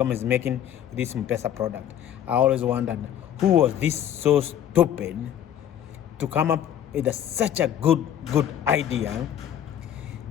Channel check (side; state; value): right; quieter; 10.3 dB